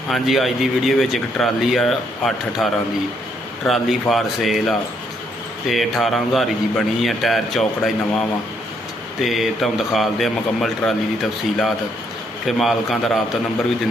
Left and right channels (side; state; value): both; normal; correlation 0.73